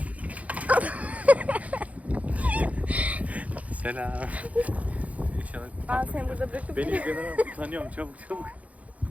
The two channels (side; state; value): left; late; 0.068 ms